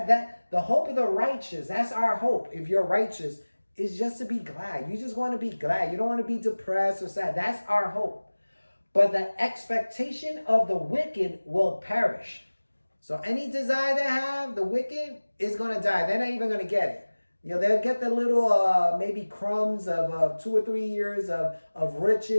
the hope of the righteous, that's our hope. If you're righteous, is just to be glad. You just want to be glad. You don't want to be depressed or sad. That's our hope. But the expectation of the wicked will perish. So any desire they have, the wicked is going to die. They're not even going to get it. They'll get the little maybe crumbs of 2 or 3 years of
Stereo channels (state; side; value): inverted; both; correlation -1.00